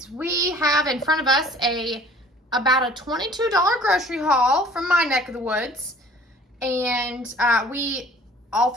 We have in front of us about a $22 grocery haul from my neck of the woods. And all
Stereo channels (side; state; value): both; normal; correlation 0.50